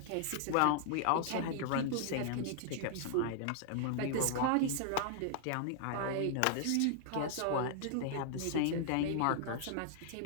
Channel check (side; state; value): both; different; correlation -0.01